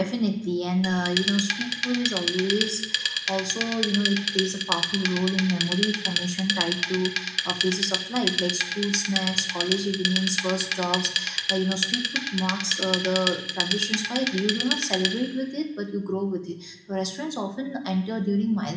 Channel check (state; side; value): identical; both; correlation 1.00